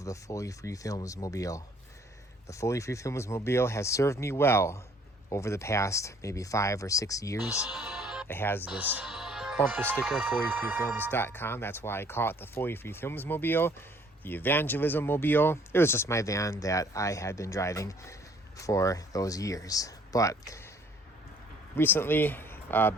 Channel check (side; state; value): both; normal; correlation 0.59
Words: the Fully Free Films Mobile. The Fully Free Films Mobile has served me well over the past maybe 5 or 6 years. It has this bumper sticker, fullyfreefilms.com. That's why I call it the Fully Free Films Mobile, the Evangelism Mobile. It was just my van that I had been driving for those years. But recently,